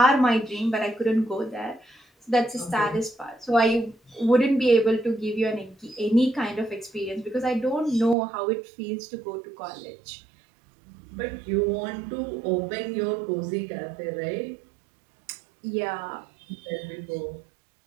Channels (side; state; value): left; drops out; at 8.2 s